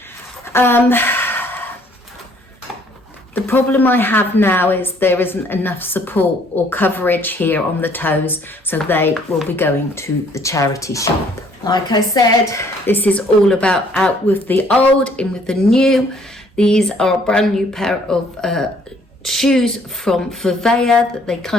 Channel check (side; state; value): both; normal; correlation 0.62